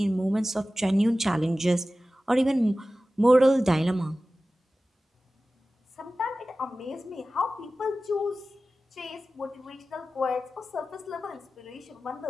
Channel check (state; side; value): normal; both; correlation 0.95